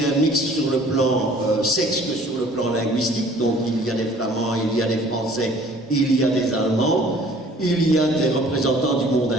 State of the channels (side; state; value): both; normal; correlation 0.52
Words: mixte sur le plan sexe que sur le plan linguistique. Donc il y a des Flamands, il y a des Français, il y a des Allemands, il y a des représentants du monde